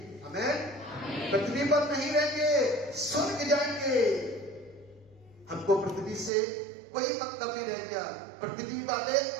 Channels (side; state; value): left; drops out; at 6.3 s